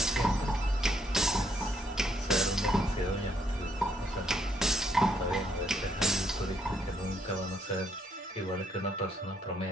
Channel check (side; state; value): both; normal; correlation 0.71